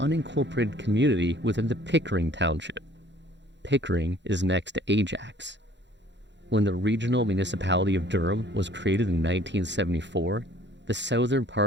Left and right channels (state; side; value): late; left; 0.52 ms